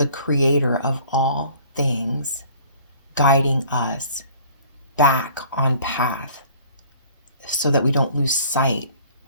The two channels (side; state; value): both; inverted; correlation -0.52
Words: creator of all things, guiding us back on path so that we don't lose sight